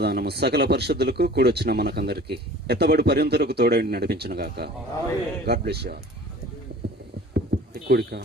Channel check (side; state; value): both; normal; correlation 0.45